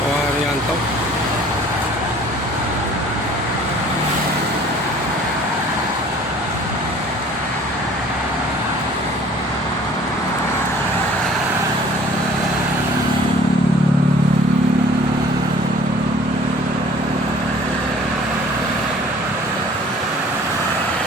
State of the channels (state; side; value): normal; both; correlation 0.51